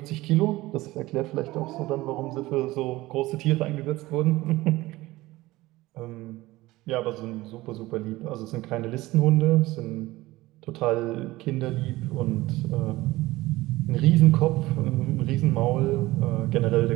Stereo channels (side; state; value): left; quieter; 18.7 dB